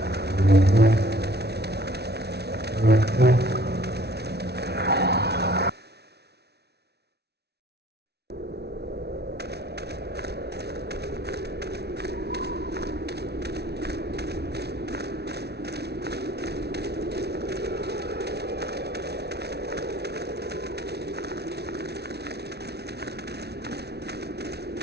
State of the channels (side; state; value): left; late; 0.48 ms